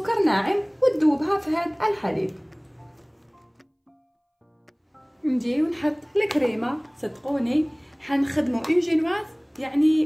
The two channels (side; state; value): both; identical; correlation 1.00